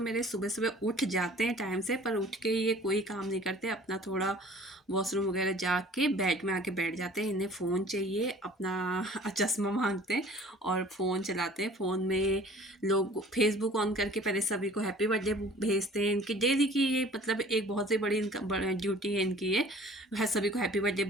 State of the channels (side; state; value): both; normal; correlation 0.49